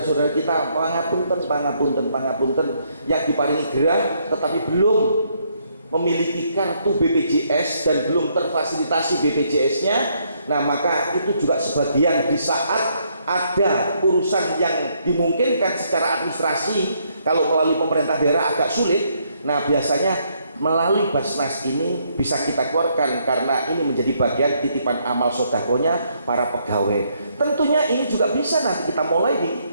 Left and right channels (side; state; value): both; inverted; correlation -0.72